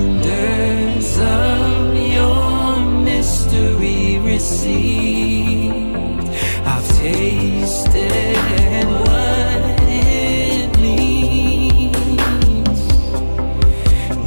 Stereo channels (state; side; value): inverted; both; correlation -1.00